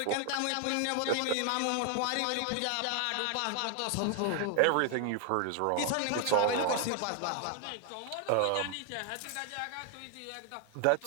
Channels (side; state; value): both; different; correlation 0.00